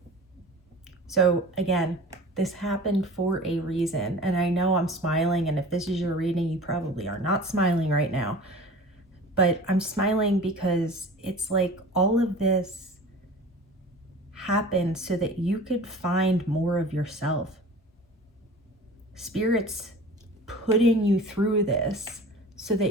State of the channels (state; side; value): normal; both; correlation 0.40